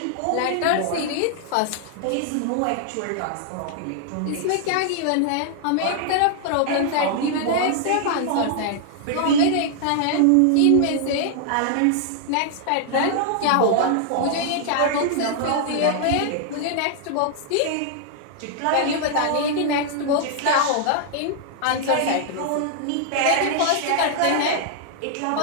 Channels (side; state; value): both; different; correlation 0.00